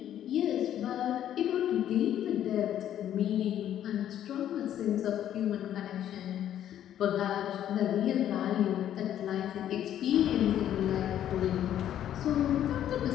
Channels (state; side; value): quieter; right; 10.9 dB